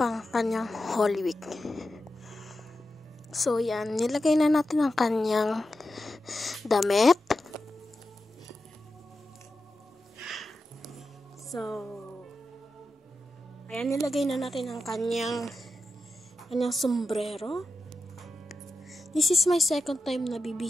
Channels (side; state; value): both; normal; correlation 0.90